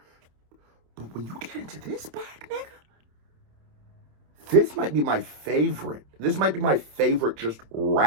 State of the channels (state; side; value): late; left; 27 ms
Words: But when you get into this bag, nigga, this might be my favorite. This might be my favorite just